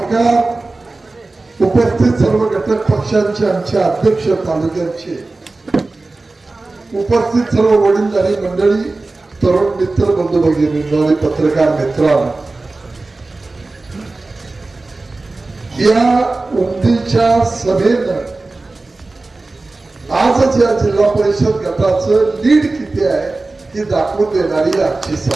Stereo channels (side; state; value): left; quieter; 3.3 dB